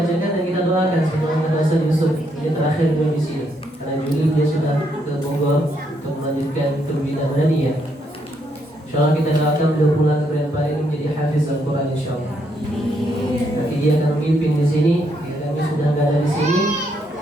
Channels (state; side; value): normal; both; correlation 0.75